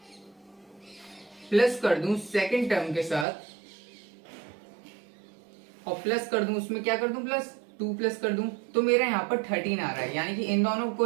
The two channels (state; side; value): drops out; left; at 3.2 s